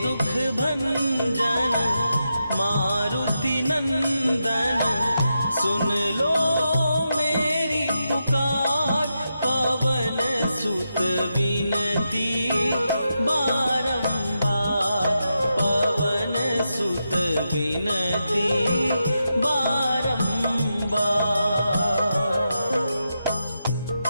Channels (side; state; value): both; inverted; correlation -0.86